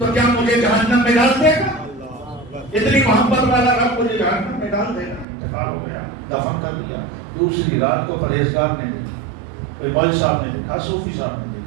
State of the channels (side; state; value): left; drops out; at 5.2 s